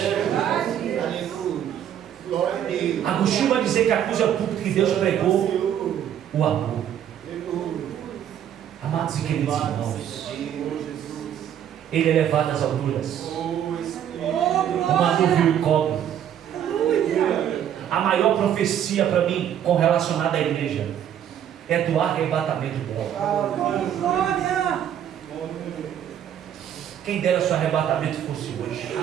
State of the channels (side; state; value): left; quieter; 10.0 dB